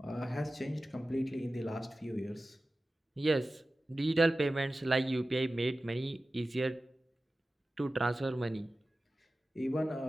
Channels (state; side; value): normal; both; correlation 0.95